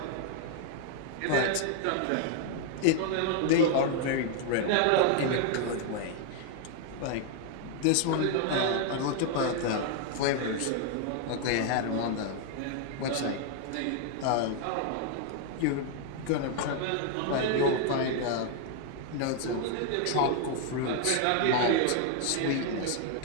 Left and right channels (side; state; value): both; different; correlation 0.00